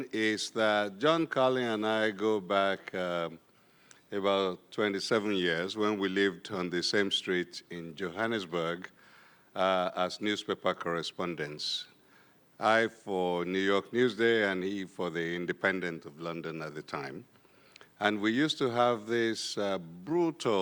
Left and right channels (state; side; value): identical; both; correlation 1.00